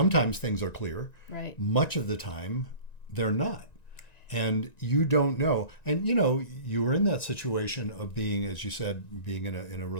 things are clear. Right. Much of the time, they're not. And you don't know. And, you were in that situation of being, as you said, being in a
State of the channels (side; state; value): right; late; 1.9 ms